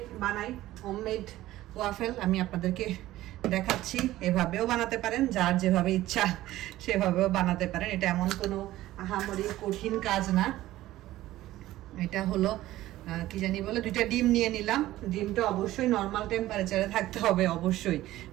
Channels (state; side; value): quieter; left; 15.5 dB